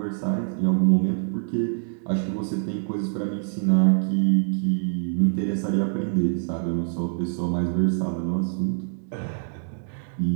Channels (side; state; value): left; silent; digital silence